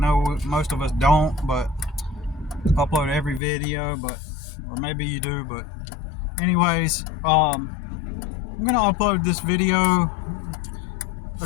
most of us don't, but upload every video, or maybe you do, but anyways, I'm gonna upload this video,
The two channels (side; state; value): right; drops out; at 3.4 s